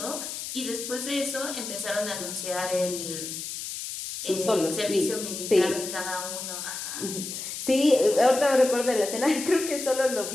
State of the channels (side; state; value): left; noise; hiss, 7 dB below the sound